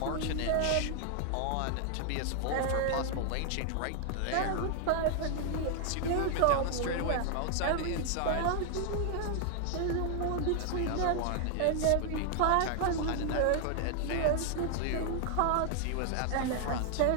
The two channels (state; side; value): different; both; correlation 0.00